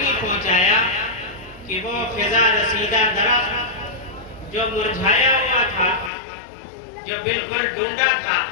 پہنچایا کہ وہ فضا رسیدہ درخت جو مرجھایا ہوا تھا، جو بالکل ڈھونڈا تھا،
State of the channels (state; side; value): drops out; right; at 6.1 s